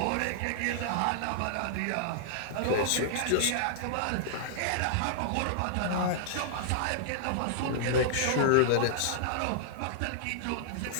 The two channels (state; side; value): different; both; correlation -0.01